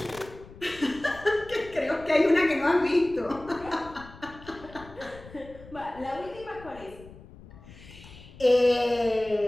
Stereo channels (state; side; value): noise; left; rumble, 19 dB below the sound